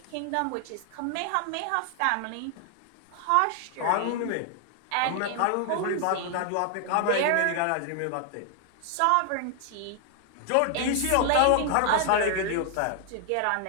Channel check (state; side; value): different; both; correlation 0.00